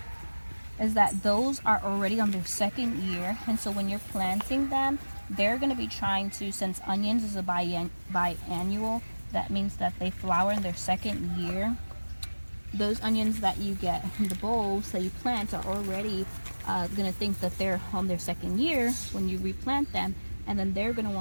is that those are already on their second year, and so when you're planting them, they're going to be trying to, since onions is a biannual, that means that they flower in their second year. Those onions that you get in the bulbs that you plant are already going to think that they're on their second year when you replant them, and then they're going to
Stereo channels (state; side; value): inverted; both; correlation -1.00